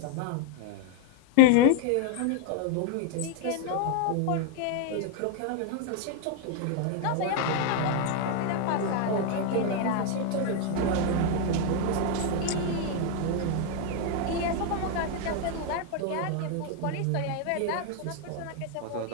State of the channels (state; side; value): different; both; correlation 0.01